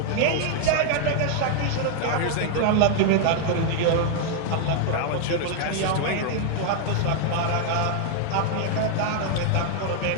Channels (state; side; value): different; both; correlation 0.00